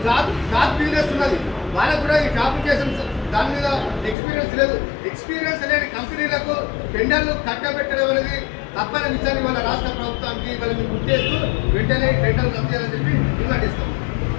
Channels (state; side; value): drops out; right; at 4.2 s